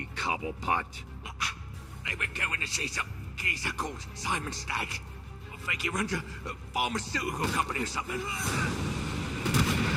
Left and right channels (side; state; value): both; identical; correlation 1.00